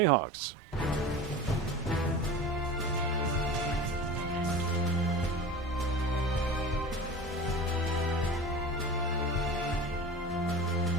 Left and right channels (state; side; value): normal; both; correlation 0.35